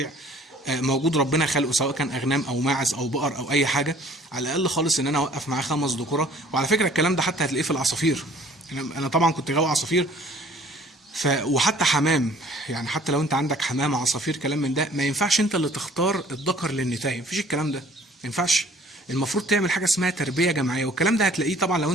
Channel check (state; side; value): normal; both; correlation 0.54